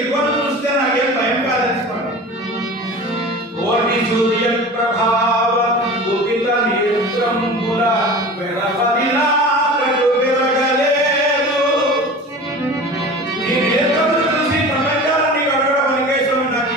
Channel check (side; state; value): both; normal; correlation 0.36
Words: చూస్తే నాకేం భయం కాదనిసుకోండి. కోటి సూర్య ప్రభావ కుపిత నేత్రంబుల వెరపదిలా వెరగలేదు. నీ నేత్రములు చూసి ప్రపంచాన్ని గడవడం అనికేశం నాకు